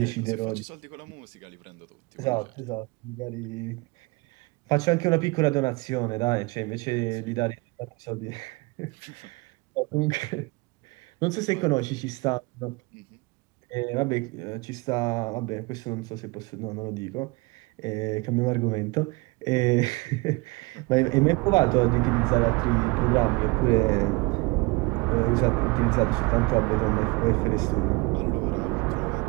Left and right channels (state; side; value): quieter; left; 26.0 dB